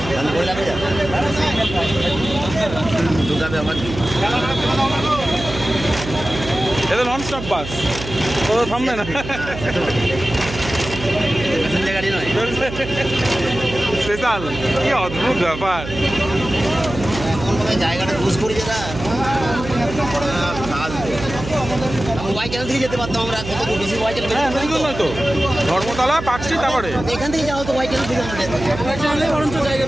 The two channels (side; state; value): right; noise; hum, 9 dB below the sound